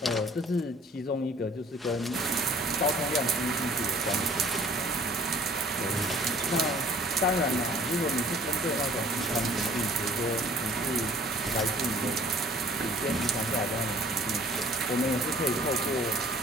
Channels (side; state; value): both; normal; correlation 0.53